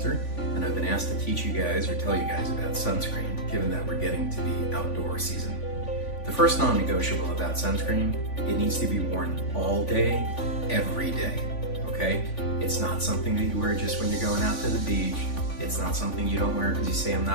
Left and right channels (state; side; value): late; right; 3.5 ms